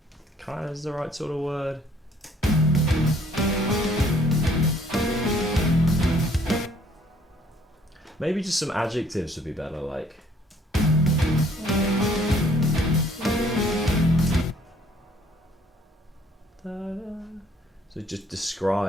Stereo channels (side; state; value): both; normal; correlation 0.61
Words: Kind of is the right sort of word. Maybe just some adjectives would be better, like. So just